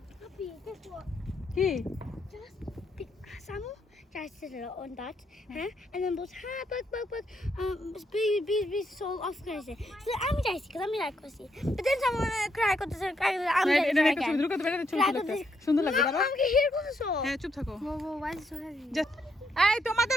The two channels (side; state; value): both; normal; correlation 0.76